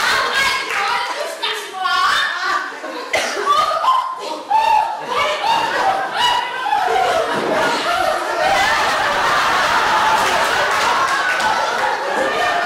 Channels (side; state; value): both; identical; correlation 1.00